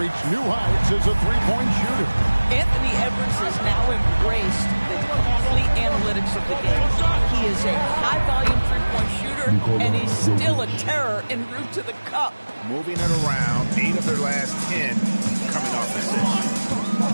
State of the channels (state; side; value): inverted; both; correlation -1.00